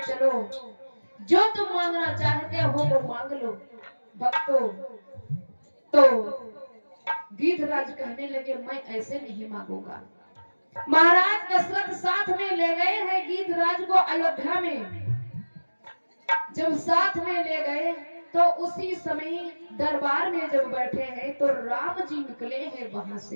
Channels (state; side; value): inverted; both; correlation -1.00